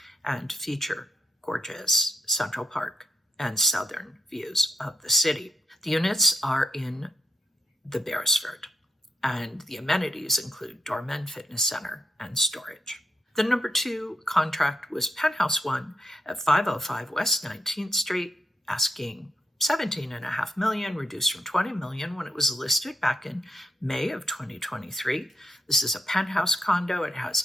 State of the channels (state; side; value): normal; both; correlation 0.83